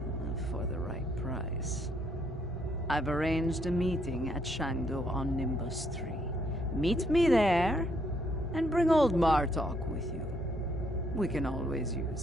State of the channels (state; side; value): normal; both; correlation 0.71